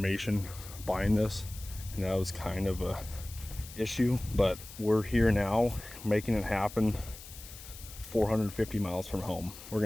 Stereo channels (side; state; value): left; noise; hiss, 15 dB below the sound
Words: buying this, and that was kind of a issue, but we're here now making it happen. 450 miles from home. We're